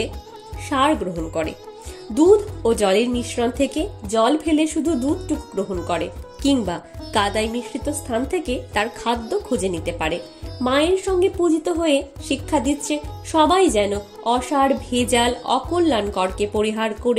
সার গ্রহণ করে, দুধ ও জলের মিশ্রণ থেকে জল ফেলে শুধু দুধটুকু গ্রহণ করে, কিংবা কাদায় মিশ্রিত স্থান থেকে তার খাদ্য খুঁজে নিতে পারে। মায়ের সঙ্গে পূজিত হয়ে শিক্ষা দিচ্ছে সবাই যেন অসার, ভেজাল, অকল্যাণকরকে পরিহার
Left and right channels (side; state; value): both; identical; correlation 1.00